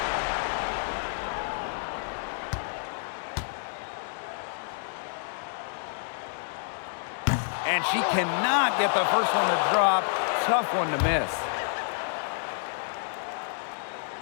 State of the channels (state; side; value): silent; right; digital silence